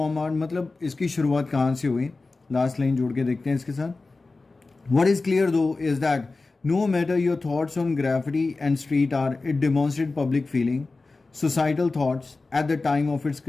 art, मतलब इसकी शुरुआत कहाँ से हुई? Last line जोड़ के देखते हैं इसके साथ. What is clear though is that no matter your thoughts on graffiti and street art, it demonstrated public feeling, societal thoughts at the time of its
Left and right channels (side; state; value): right; quieter; 3.6 dB